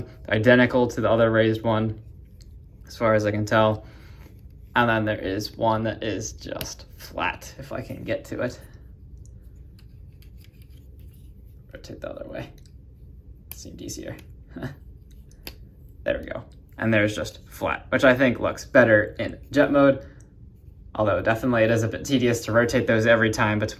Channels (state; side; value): identical; both; correlation 1.00